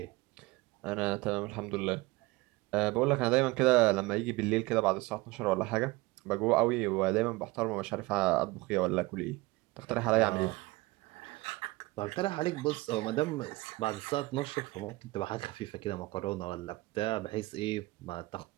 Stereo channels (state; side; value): quieter; left; 21.4 dB